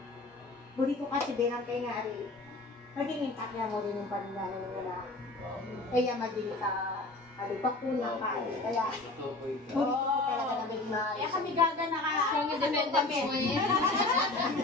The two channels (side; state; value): right; quieter; 3.0 dB